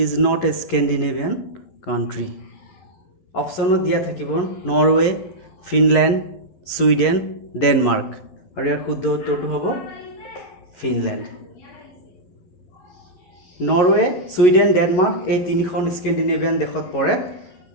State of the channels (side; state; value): right; late; 11 ms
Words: is not a Scandinavian country? অপশ্যনত দিয়া থাকিব Norway, Finland, Sweden, Denmark. আৰু ইয়াৰ শুদ্ধ উত্তৰটো হ'ব ফিনলেণ্ড। নৰৱে, ছুইডেন, ডেনমাৰ্ক এই তিনিখন স্কেন্ডিনেভিয়ান দেশত পৰে।